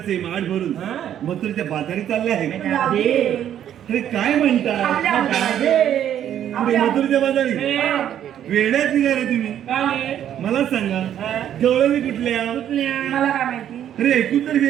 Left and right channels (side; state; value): left; quieter; 10.4 dB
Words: माठ भरून मथुरेच्या बाजारी चालले आहे जाऊ दे. अरे काय म्हणता आपल्या पुढे आपल्या मथुरेच्या बाजारी वेड्यात निघाले तुम्ही मला सांगा गवळणी कुठल्या मला काय माहिती अरे ऐकून तर